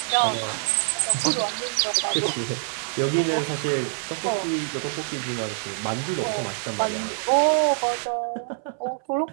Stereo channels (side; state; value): left; silent; 62 dB below the other